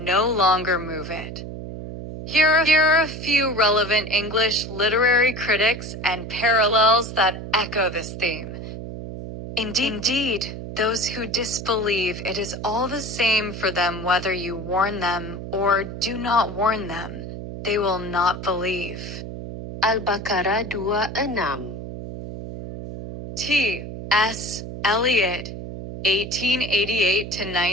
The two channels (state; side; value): noise; right; hum, 9 dB below the sound